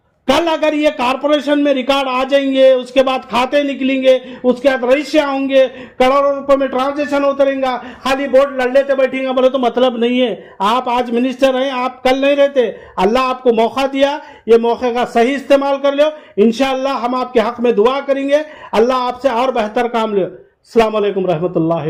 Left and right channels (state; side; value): identical; both; correlation 1.00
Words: कल अगर ये कारपोरेशन में रिकॉर्ड आ जाएंगे, उसके बाद खाते निकलेंगे, उसके बाद रजिस्ट्रियां होंगे, करोड़ों रुपए में ट्रांजेक्शन होता रहेगा, खाली बोर्ड लड़ लेते बैठेंगे बोले तो मतलब नहीं है। आप आज मिनिस्टर हैं, आप कल नहीं रहते। अल्लाह आपको मौका दिया, ये मौके का सही इस्तेमाल कर लो। इंशाअल्लाह हम आपके हक में दुआ करेंगे, अल्लाह आपसे और बेहतर काम ले। अस्सलाम वालेकुम